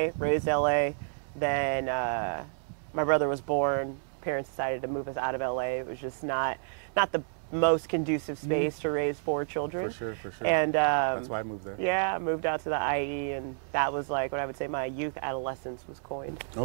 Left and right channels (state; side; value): silent; left; 58 dB below the other